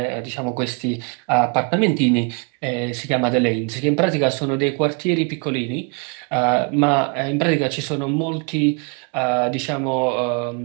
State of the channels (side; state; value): left; quieter; 35.7 dB